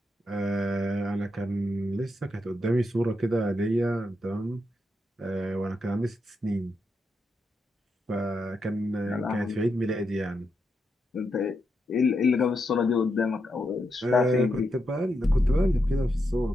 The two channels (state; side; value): normal; both; correlation 0.83